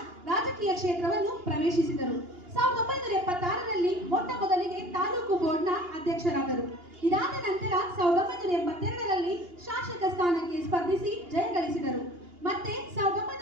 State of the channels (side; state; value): left; late; 2.8 ms